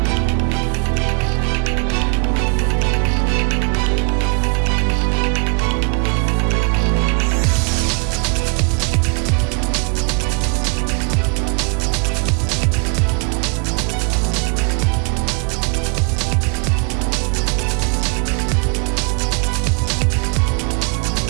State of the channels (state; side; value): quieter; left; 35.9 dB